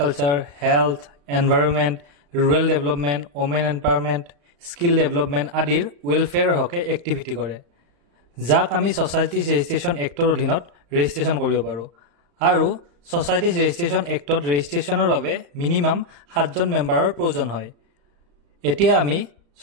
health, environment, rural development, women empowerment, skill development আদিৰ ৱেলফেয়াৰৰ হকে এক্টিভিটি কৰে, যাক আমি সোসাইটিজ ৰেজিষ্ট্ৰেশ্যন এক্টৰ অধীনত ৰেজিষ্ট্ৰেশ্যন কৰিব পাৰোঁ। আৰু সোসাইটিজ ৰেজিষ্ট্ৰেশ্যন এক্টত ৰেজিষ্ট্ৰেশ্যনৰ বাবে মিনিমাম 7জন মেম্বাৰৰ প্ৰয়োজন হয়। এতিয়া আমি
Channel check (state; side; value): late; left; 35 ms